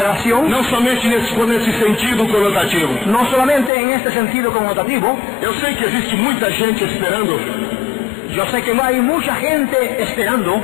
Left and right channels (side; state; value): right; drops out; at 3.7 s